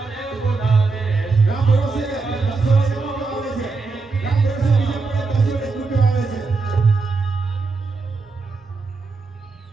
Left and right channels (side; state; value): left; quieter; 4.1 dB